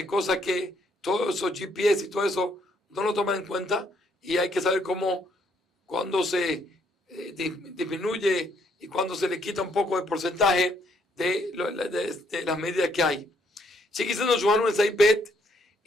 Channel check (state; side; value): normal; both; correlation 0.70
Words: cosas que todos esos GPS y todo eso no lo toman en cuenta, y hay que saber cuándo se disminuye y cuando se le quita un poco de porcentaje de las medidas que hay. Sigue diciendo Johannu en Saibet,